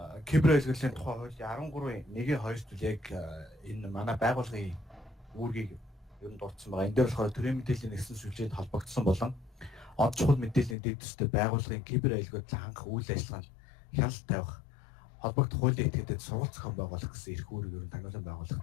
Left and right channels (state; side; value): drops out; right; at 10.8 s